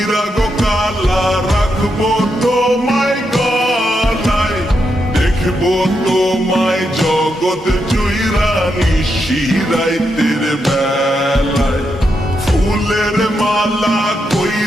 গো কালা রাখবো তোমায় গলায়, দেখবো তোমায় জগৎ জুইরা নিশিরাইতের বেলায়। ফুলের মালা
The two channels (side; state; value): both; normal; correlation 0.83